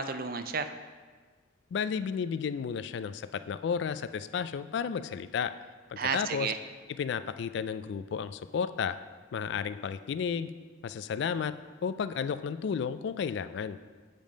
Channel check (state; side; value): quieter; right; 4.5 dB